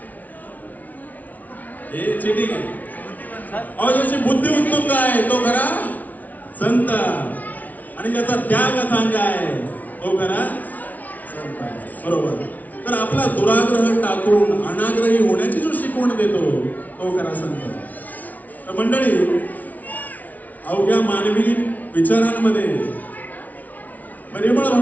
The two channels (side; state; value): right; late; 0.075 ms